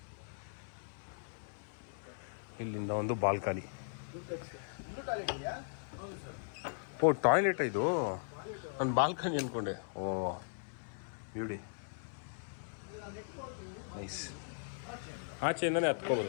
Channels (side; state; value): right; silent; 52 dB below the other